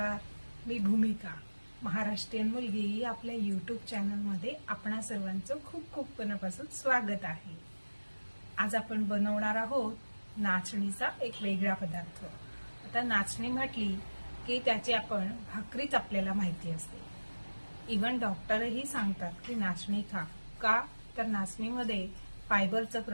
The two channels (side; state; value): both; inverted; correlation -1.00